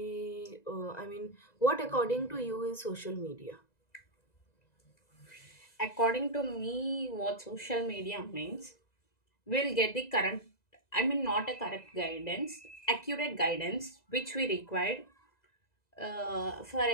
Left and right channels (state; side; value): late; right; 2.0 ms